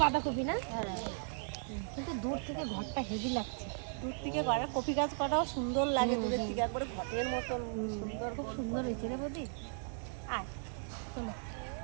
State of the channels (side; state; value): left; silent; 53 dB below the other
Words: বাঁধাকপি না, কিন্তু দূর থেকে ঘরটা হেভি লাগছে। দূর থেকে করে কপি গাছ কটাও সুন্দর লাগে, দূরের থেকে একবারে ঘরের মতন সুন্দর। খুব সুন্দর হয়েছে রে বৌদি। আয় চলো।